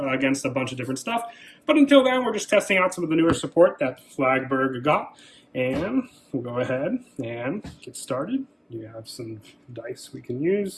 a bunch of different stuff. But until then, we're just testing out some of the newer support that Flagburg got, and we'll go ahead and get started. You have some dice we can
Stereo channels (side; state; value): both; identical; correlation 1.00